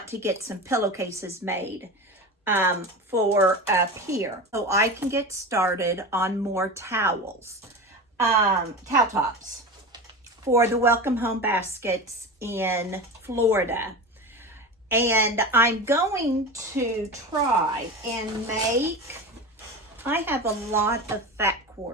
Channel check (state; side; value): normal; both; correlation 0.27